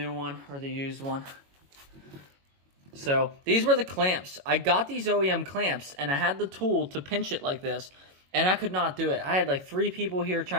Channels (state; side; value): late; left; 22 ms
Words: one, or the used one. So these were the clamps. I got these OEM clamps and I had the tool to pinch it like this, and I could not do it. I had like 3 people here